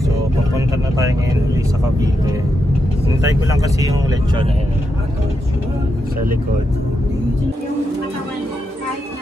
so papunta na tayo ngayon ulit sa Cavite. Hintay ko lang kasi yung lechon na yun sa likod.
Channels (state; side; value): normal; both; correlation 0.84